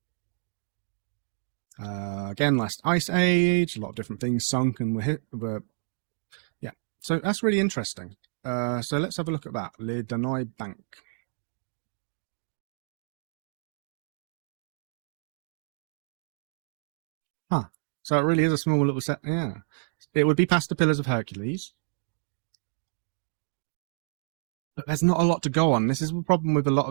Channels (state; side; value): silent; left; digital silence